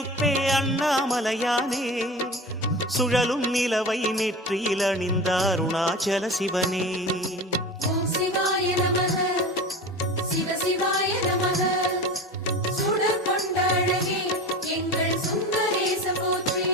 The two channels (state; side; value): normal; both; correlation 0.32